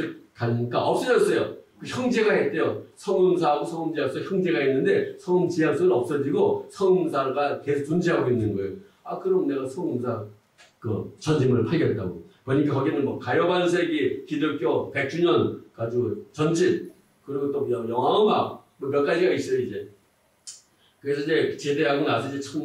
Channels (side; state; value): both; identical; correlation 1.00